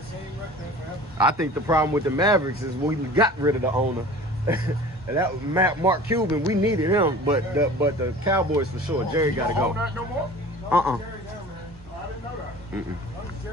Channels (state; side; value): normal; both; correlation 0.42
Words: same record forever. I think the problem with the Mavericks is we got rid of the owner. And that was Mark Cuban. We needed him, but the Cowboys for sure. Jerry got to Own go. that no more? Jerry there, man. Oh, I didn't know that. Long as